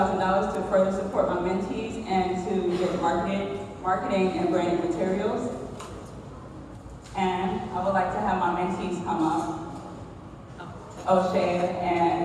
to further support my mentees and to get marketing and branding materials. And I would like to have my mentees come up, O'Shea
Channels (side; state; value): both; identical; correlation 1.00